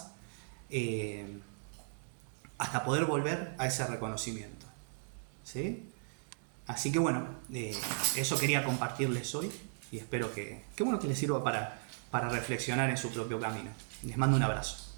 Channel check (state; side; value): silent; left; digital silence